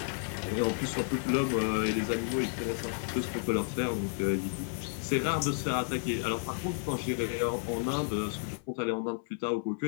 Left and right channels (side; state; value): right; silent; 57 dB below the other